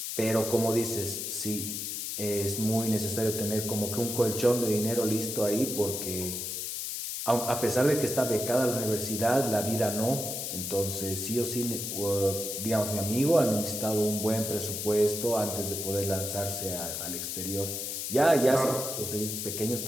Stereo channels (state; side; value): noise; left; hiss, 4 dB below the sound